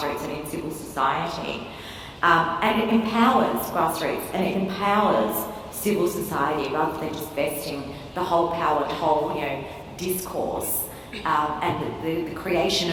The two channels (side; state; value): both; identical; correlation 1.00